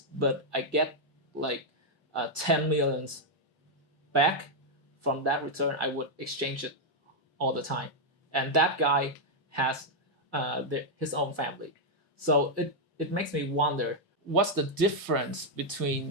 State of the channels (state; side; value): normal; both; correlation -0.02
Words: but I get like 10 millions back from that return, I would exchange it all the time. And that guy has his own family, so it makes me wonder what's the difference